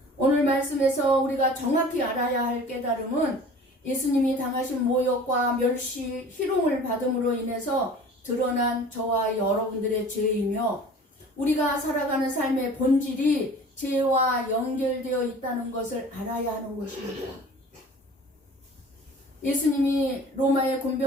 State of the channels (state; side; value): normal; both; correlation 0.44